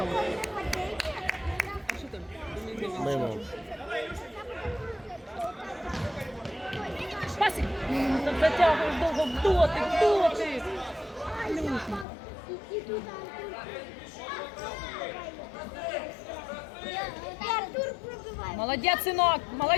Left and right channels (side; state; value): right; drops out; at 12.1 s